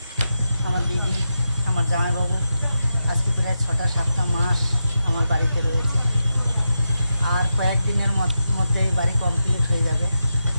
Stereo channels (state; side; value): inverted; both; correlation -0.88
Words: আমার দিদি, আমার জামাইবাবু আজকে প্রায় 6-7টা মাস আমার বাড়িতে রয়েছে। আর কয়েকদিনের মধ্যে বাড়ি কমপ্লিট হয়ে যাবে।